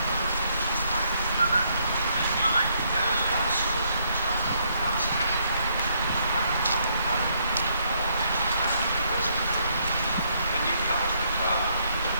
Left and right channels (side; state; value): both; inverted; correlation -0.72